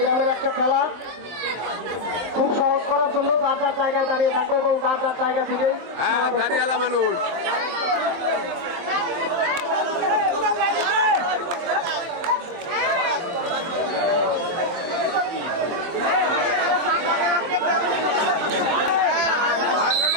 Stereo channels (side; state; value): left; late; 23 ms